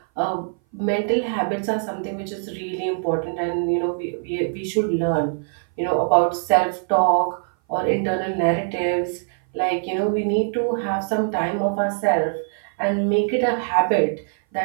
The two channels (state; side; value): silent; left; 59 dB below the other